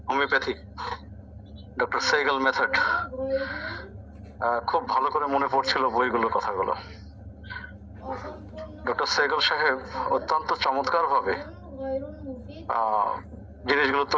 homeopathy, doctor Sehgal method, খুব ভালো করে মনে পড়ছিল বইগুলো, কথাগুলো। ডক্টর সেগাল সাহেব অত্যন্ত চমৎকার ভাবে জিনিসগুলো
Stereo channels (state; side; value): identical; both; correlation 1.00